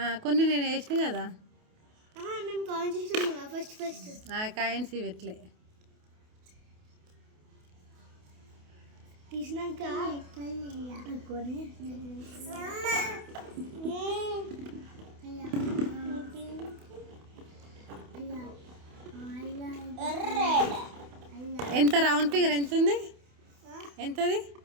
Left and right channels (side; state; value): left; late; 28 ms